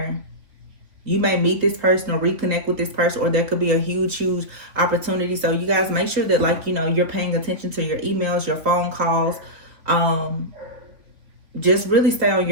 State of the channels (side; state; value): left; late; 3.7 ms